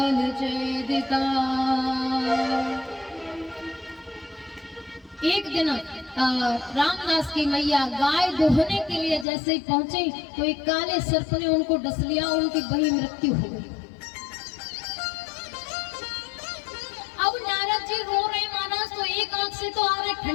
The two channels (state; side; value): drops out; right; at 9.2 s